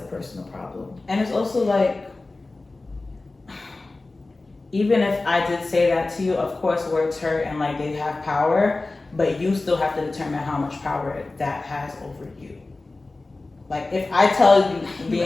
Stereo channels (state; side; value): quieter; right; 3.3 dB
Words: personal problem. And it's also like, even if I did say that to you, of course words hurt and like they have power, but you still have to determine how much power that has over you. Like if I tell you,